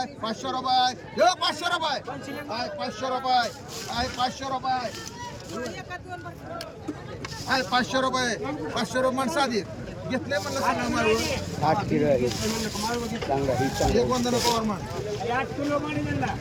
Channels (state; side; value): identical; both; correlation 1.00